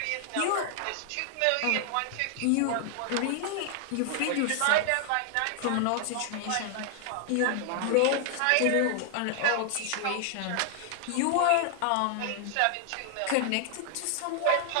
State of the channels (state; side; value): different; both; correlation 0.00